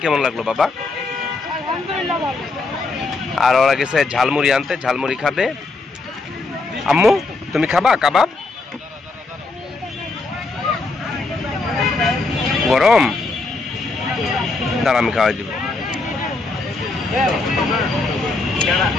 কেমন লাগলো বাবা? আর ওরা গেছে ঝালমুড়ি আনতে, ঝালমুড়ি খাবে। আম্মু তুমি খাবা কাবাব? গরম? দাঁড়া আমি খাওয়াই দিব।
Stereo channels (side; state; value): right; quieter; 3.6 dB